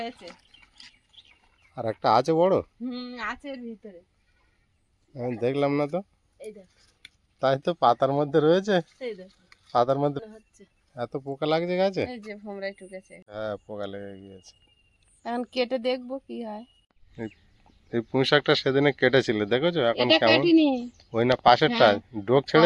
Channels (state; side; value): identical; both; correlation 1.00